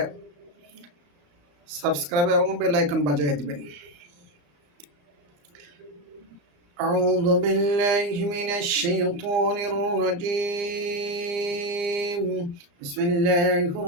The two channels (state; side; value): late; left; 34 ms